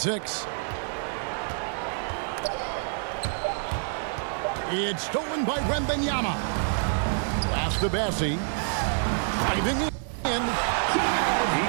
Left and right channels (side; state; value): left; silent; digital silence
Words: It's stolen by Wembanyama. Pass to Bassi. Driving in. He